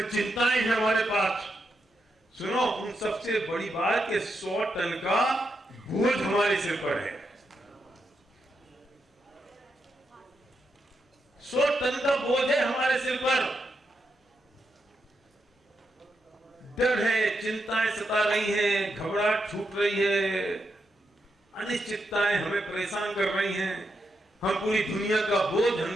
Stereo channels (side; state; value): both; normal; correlation 0.83